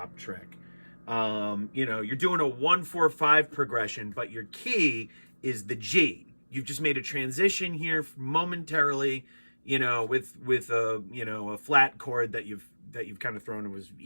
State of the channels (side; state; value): both; inverted; correlation -1.00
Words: trick. You know, you're doing a 1-4-5 progression, but your key is the G. You've just made a transition here momentarily, you know, with a, you know, a flat chord that you've kind of thrown. It was